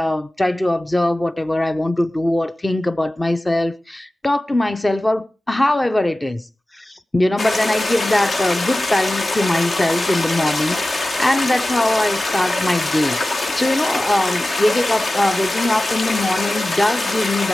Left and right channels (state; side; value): normal; both; correlation 0.96